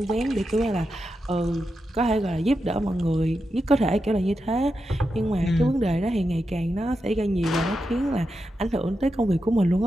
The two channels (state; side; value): normal; both; correlation 0.88